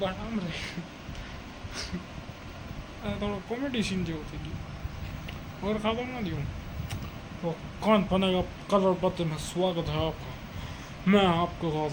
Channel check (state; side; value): identical; both; correlation 1.00